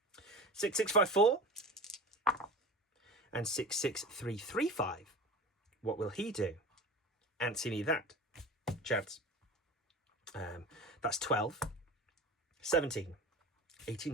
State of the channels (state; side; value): normal; both; correlation 0.34